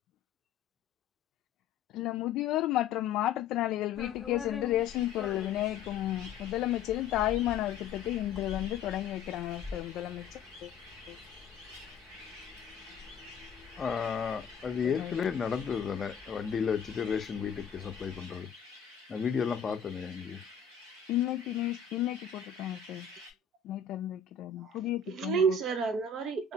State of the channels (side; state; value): right; quieter; 6.3 dB